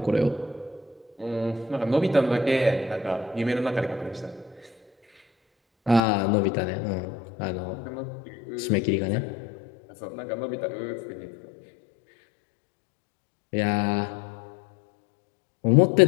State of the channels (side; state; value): right; drops out; at 6.0 s